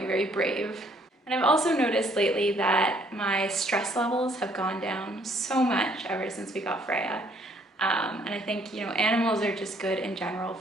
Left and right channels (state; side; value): normal; both; correlation 0.64